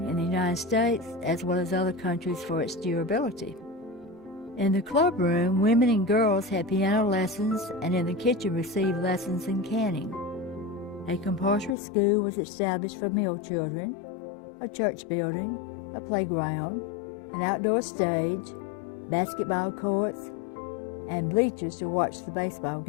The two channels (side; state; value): right; drops out; at 11.8 s